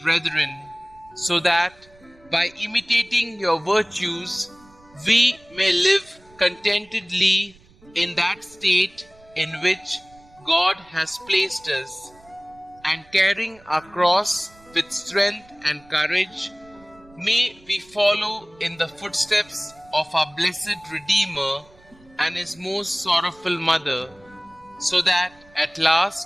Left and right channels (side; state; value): right; noise; rumble, 27 dB below the sound